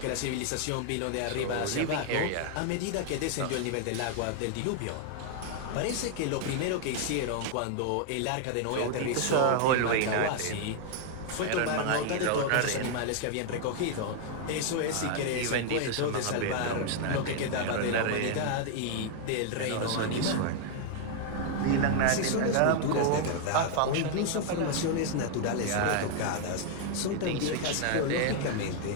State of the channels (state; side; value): different; both; correlation 0.00